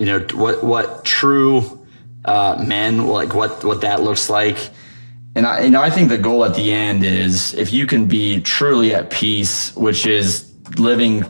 true men, like what that looks like. And I think the goal at the end is if you can be truly at peace, which is living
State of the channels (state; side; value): inverted; both; correlation -1.00